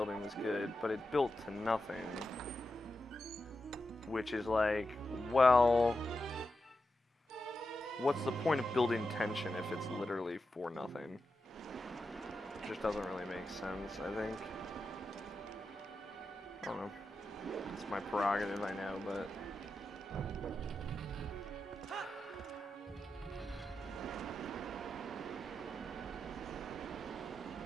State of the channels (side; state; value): both; normal; correlation 0.89